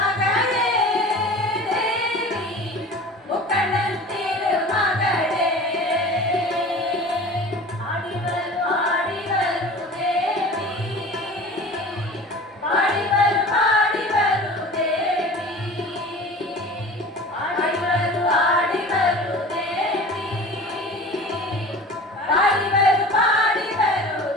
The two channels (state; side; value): normal; both; correlation 0.39